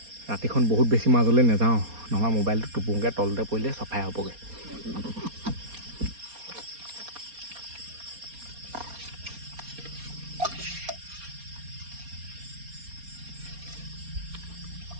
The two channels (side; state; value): left; late; 4.3 ms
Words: ৰাতিখন বহুত বেছি মাজলৈ নাযাওঁ, নহ'লে মোবাইলটো টোপুংকৈ তলতে পৰিলে চফাই হ'বগৈ।